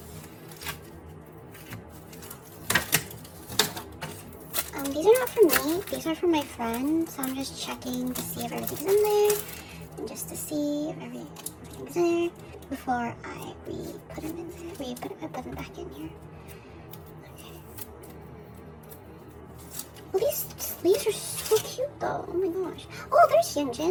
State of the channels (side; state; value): both; identical; correlation 1.00